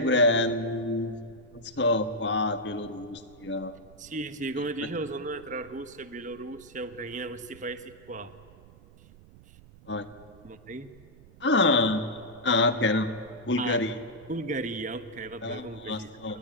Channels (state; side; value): noise; right; rumble, 22 dB below the sound